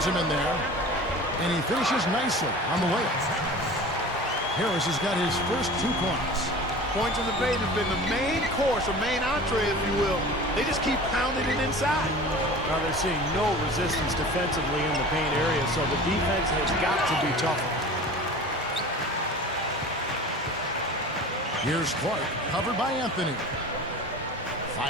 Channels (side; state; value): both; normal; correlation 0.38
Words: him in there. And he finishes nicely on the layup. Harris has got his first 2 points. Points in the paint have been the main course, or main entree, if you will. They just keep pounding it inside. Now they're seeing no resistance defensively in the paint area, so the defense has got to be tougher. Here's Clark, covered by Anthony.